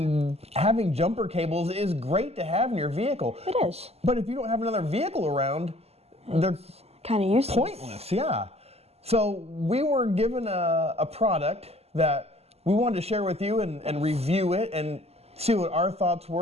having jumper cables is great to have in your vehicle. It is. But if you don't have another vehicle around, they're kind of useless. Pointless, yeah. So we were given a product that we wanted to share with you and review it and see what our thoughts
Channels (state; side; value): late; left; 0.30 ms